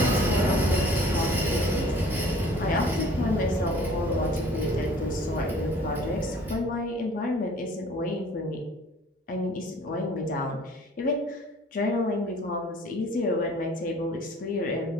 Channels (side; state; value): both; normal; correlation 0.51